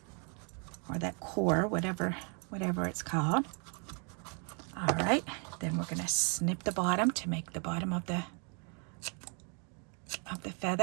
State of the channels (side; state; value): left; quieter; 37.9 dB